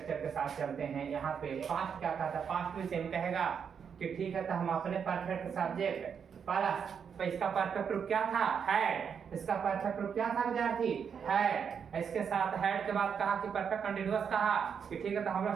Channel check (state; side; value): quieter; left; 7.0 dB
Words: के साथ चलते हैं। यहाँ पे पास्ट क्या था, पास्ट भी सेम कहेगा कि ठीक है तो हम अपने परफेक्ट सब्जेक्ट प्लस, तो इसका परफेक्ट रूप क्या था, हैड, इसका परफेक्ट रूप क्या था विद्यार्थी, हैड, इसके साथ हैड के बाद कहा कि परफेक्ट कंटीन्यूअस कहा कि ठीक है तो हम